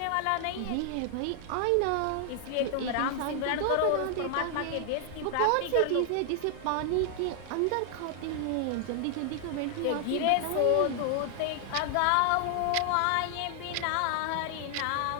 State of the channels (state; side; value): different; both; correlation 0.00